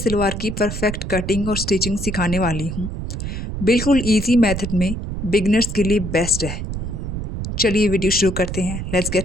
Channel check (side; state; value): right; noise; rumble, 5 dB below the sound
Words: की परफेक्ट कटिंग और स्टिचिंग सिखाने वाली हूँ। बिल्कुल इजी मेथड में बिगनर्स के लिए बेस्ट है। चलिए वीडियो शुरू करते हैं। Let's